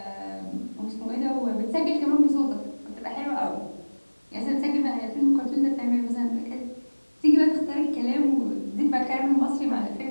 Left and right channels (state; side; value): inverted; both; correlation -1.00